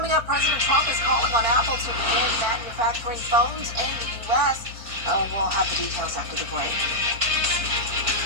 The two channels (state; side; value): late; left; 4.5 ms